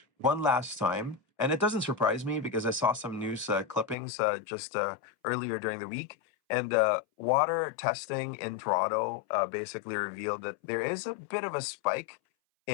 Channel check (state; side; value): drops out; right; at 4.0 s